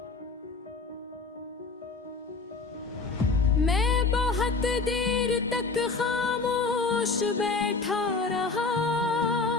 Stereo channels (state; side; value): quieter; right; 4.1 dB